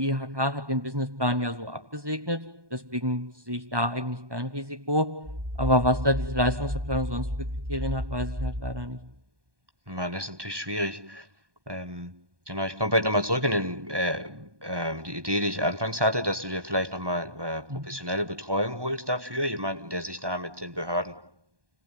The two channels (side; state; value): left; late; 1.2 ms